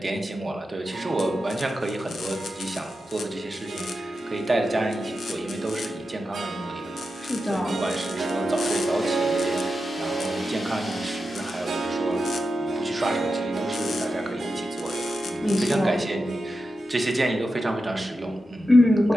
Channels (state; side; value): normal; both; correlation 0.90